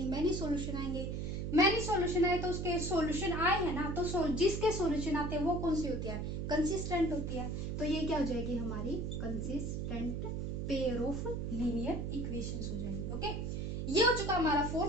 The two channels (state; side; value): noise; right; hum, 3 dB below the sound